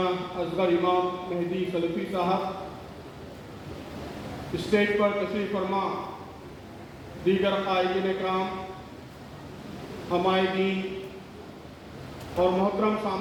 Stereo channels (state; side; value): identical; both; correlation 1.00